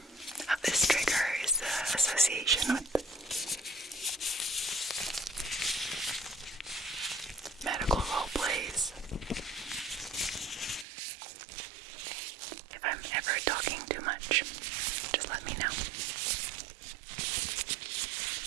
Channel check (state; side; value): drops out; left; at 10.9 s